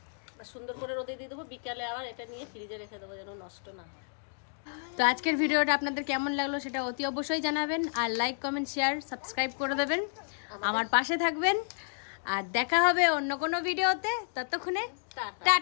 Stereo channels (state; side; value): silent; right; digital silence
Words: সুন্দর করে রোদে দিয়ে দেবো। বিকালে আবার এটা নিয়ে ফ্রিজে রেখে দেবো যেন নষ্ট না হয়। তো আজকের ভিডিওটা আপনাদের কেমন লাগলো সেটা অতি অবশ্যই জানাবেন, আর লাইক কমেন্ট শেয়ার সাবস্ক্রাইব করে দেবেন, আমার পাশে থাকবেন। আর দেখা হবে অন্য কোনো ভিডিওতে, ততক্ষণে